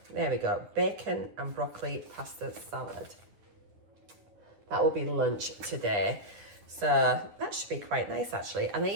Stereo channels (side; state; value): left; late; 9.7 ms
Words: There we go. Bacon and broccoli pasta salad. That will be lunch today. So that should be quite nice actually. And I